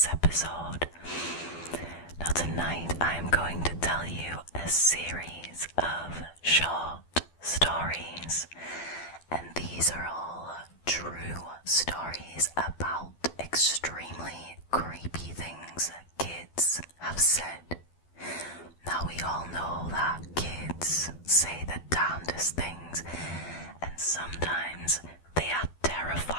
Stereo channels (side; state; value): right; late; 12 ms